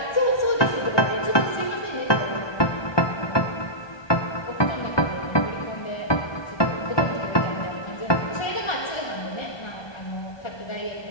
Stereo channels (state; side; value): late; right; 1.2 ms